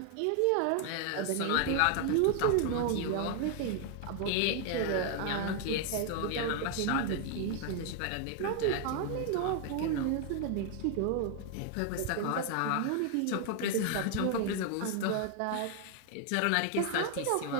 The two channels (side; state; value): both; different; correlation 0.00